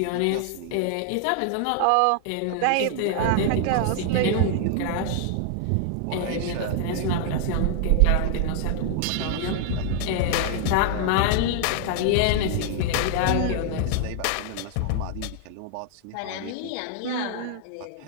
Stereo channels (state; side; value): different; both; correlation 0.00